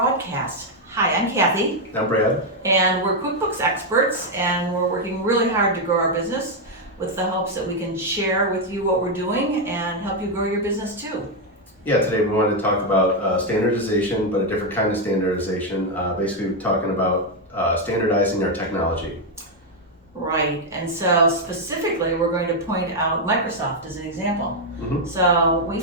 Hi, I'm Kathy, I'm Brad. and we're QuickBooks experts, and we're working really hard to grow our business with the hopes that we can share with you what we're doing and help you grow your business too. Yeah, today we wanted to talk about standardization, but a different kind of standardization. Basically, we're talking about standardizing our technology. Right, and so specifically, we're going to point out Microsoft as an example. Mm-hmm. So we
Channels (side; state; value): both; normal; correlation 0.02